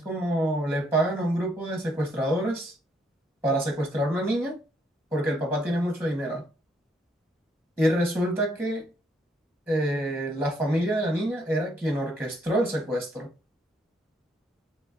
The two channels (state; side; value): normal; both; correlation 0.71